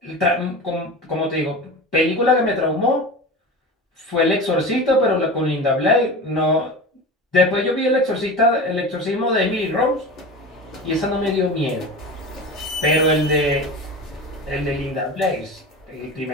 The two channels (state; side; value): normal; both; correlation 0.30